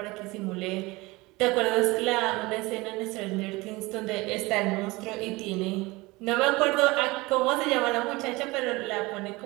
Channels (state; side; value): quieter; left; 22.4 dB